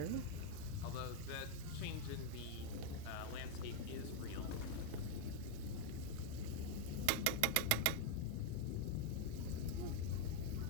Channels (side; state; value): both; different; correlation 0.01